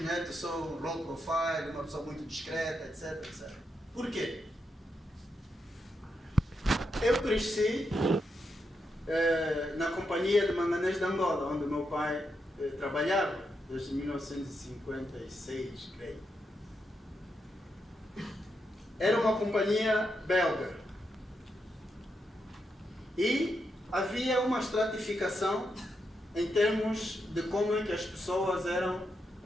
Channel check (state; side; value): normal; both; correlation 0.83